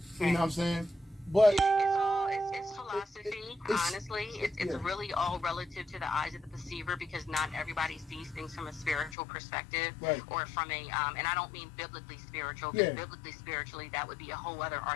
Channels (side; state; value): right; drops out; at 9.2 s